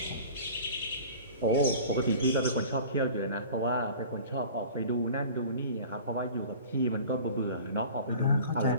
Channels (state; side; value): inverted; both; correlation -0.42